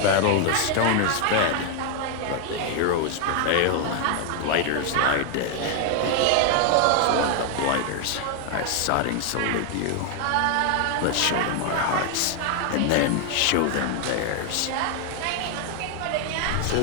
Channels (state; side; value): different; both; correlation 0.00